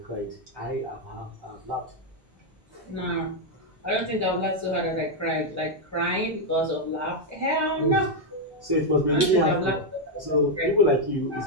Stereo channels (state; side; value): normal; both; correlation 0.00